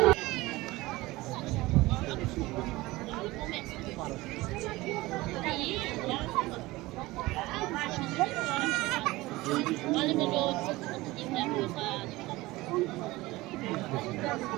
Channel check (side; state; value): left; quieter; 19.9 dB